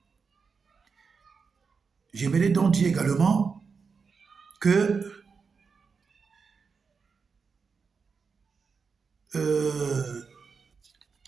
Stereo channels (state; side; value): quieter; left; 5.3 dB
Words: J'aimerais donc dire également que